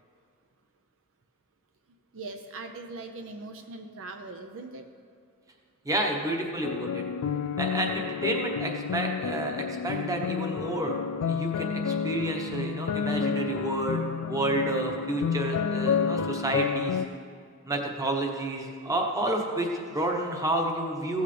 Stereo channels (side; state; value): both; normal; correlation 0.16